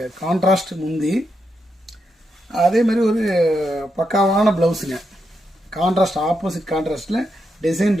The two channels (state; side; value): normal; both; correlation 0.83